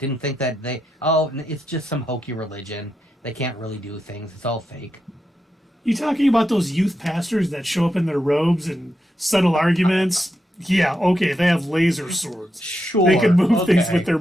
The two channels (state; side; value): normal; both; correlation 0.85